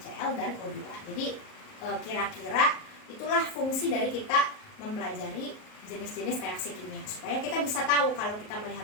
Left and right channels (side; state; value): right; late; 38 ms